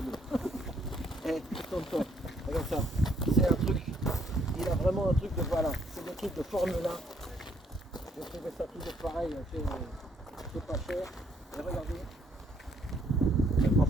Eh, tonton, regarde ça. C'est un truc. Il a vraiment un truc de voilà. C'est des trucs de Formule 1. J'ai trouvé ça toujours pareil. C'est pas cher. Et regardez. En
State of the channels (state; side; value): normal; both; correlation 0.68